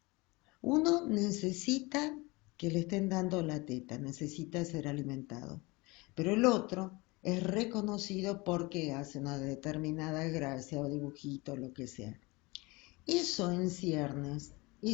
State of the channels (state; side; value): quieter; right; 24.4 dB